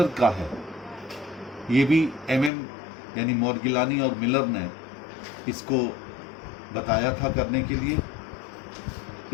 का है। ये भी एमएम यानी मॉर्गिलानी और मिलर ने इसको बताया था करने के लिए।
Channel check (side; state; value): right; drops out; at 2.5 s